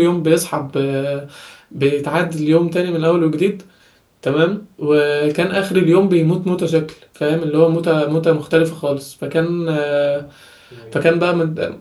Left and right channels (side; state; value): both; identical; correlation 1.00